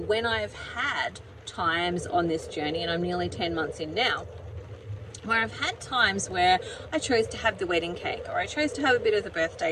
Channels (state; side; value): identical; both; correlation 1.00